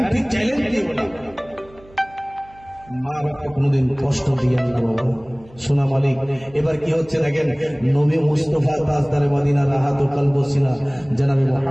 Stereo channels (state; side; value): noise; right; hum, 25 dB below the sound